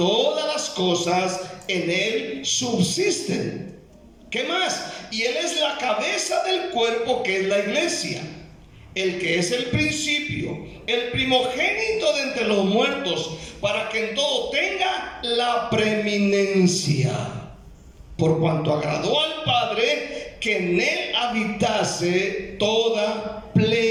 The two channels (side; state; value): both; identical; correlation 1.00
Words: las cosas en Él subsisten. ¿Qué más? Y Él es la cabeza del cuerpo, que es la iglesia, el que es el principio, el primogénito de entre los muertos, para que en todo tenga la preeminencia, por cuanto agradó al Padre que en Él habitase toda